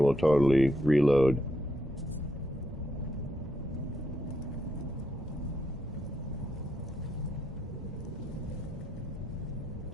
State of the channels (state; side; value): normal; both; correlation 0.79